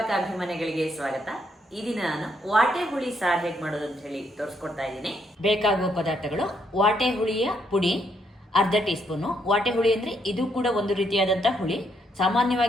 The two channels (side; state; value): both; normal; correlation 0.74